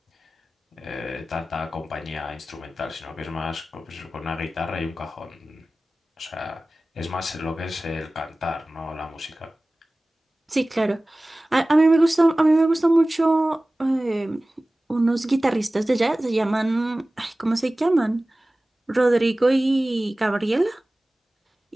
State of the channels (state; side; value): normal; both; correlation 0.97